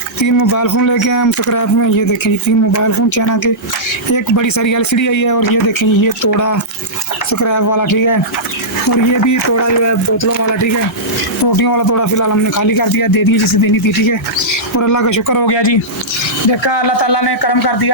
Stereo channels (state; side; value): normal; both; correlation -0.14